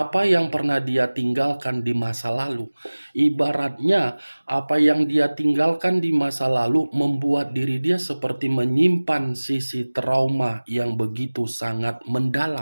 yang pernah dia tinggalkan di masa lalu. Ibaratnya, apa yang dia tinggalkan di masa lalu membuat diri dia seperti menyimpan sisi trauma yang begitu sangat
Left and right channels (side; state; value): both; inverted; correlation -1.00